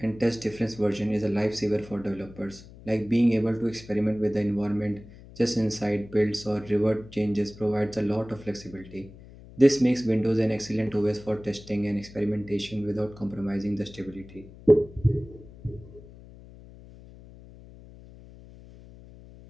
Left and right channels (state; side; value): noise; left; hum, 19 dB below the sound